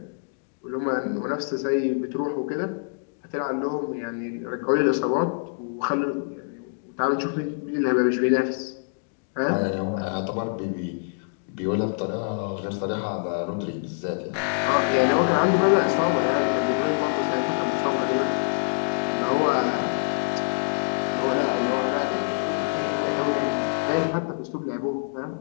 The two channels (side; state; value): right; silent; digital silence